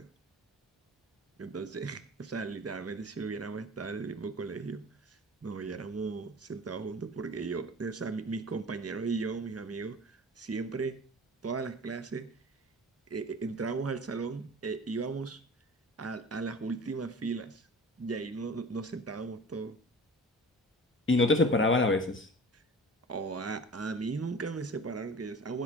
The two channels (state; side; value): normal; both; correlation 0.40